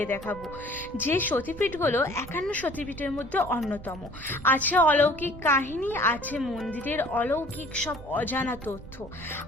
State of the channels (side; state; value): right; noise; rumble, 16 dB below the sound